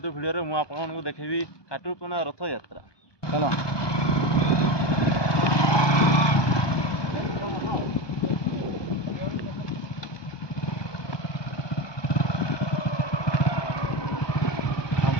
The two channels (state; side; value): late; right; 1.2 ms